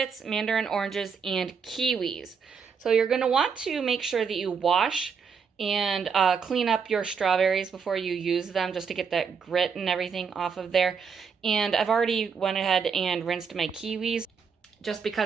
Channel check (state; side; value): quieter; left; 6.1 dB